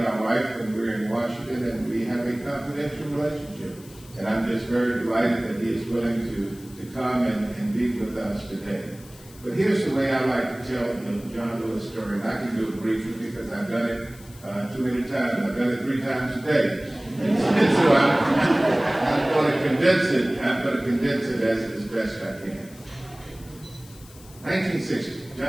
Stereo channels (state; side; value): noise; left; hiss, 22 dB below the sound